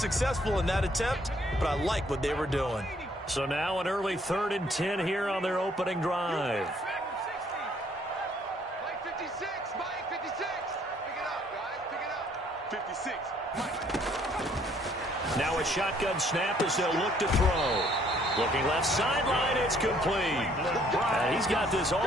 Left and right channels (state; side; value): normal; both; correlation 0.64